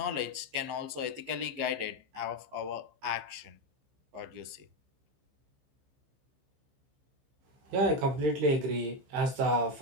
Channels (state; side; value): late; left; 15 ms